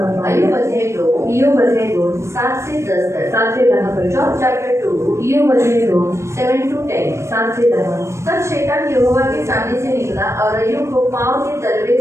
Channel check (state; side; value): late; left; 0.13 ms